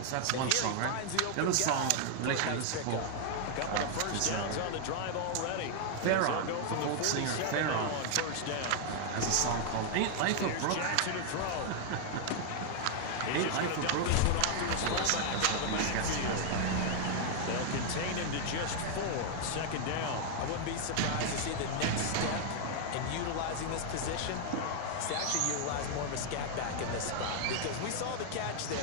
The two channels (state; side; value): different; both; correlation 0.00